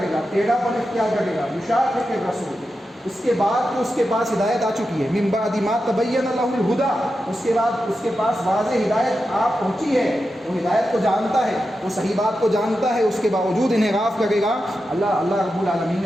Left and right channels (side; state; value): both; normal; correlation 0.90